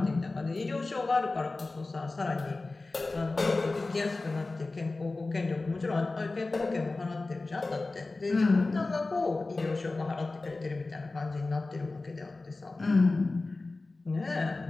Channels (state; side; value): quieter; right; 3.3 dB